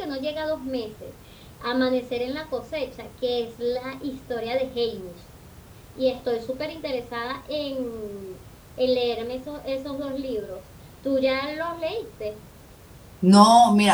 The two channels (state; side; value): identical; both; correlation 1.00